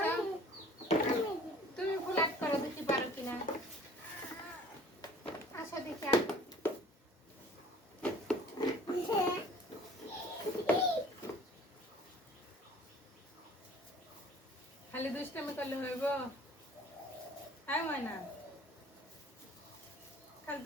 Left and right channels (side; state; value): both; normal; correlation 0.49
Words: তুমি ফুল আট করো, দেখি পারো কিনা। আসো দেখি। খালি দুষ্টামি করলে হইব? হ্যাঁ ময়না, খালি